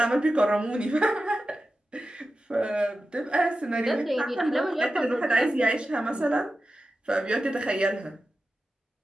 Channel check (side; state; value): both; normal; correlation 0.92